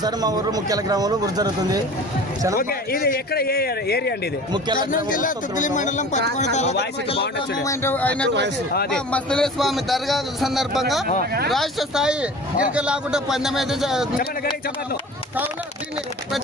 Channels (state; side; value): normal; both; correlation 0.40